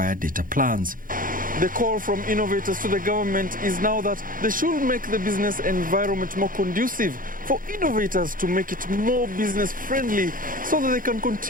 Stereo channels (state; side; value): late; left; 0.40 ms